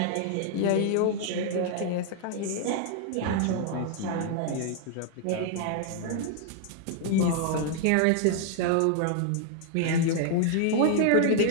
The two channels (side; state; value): both; different; correlation 0.00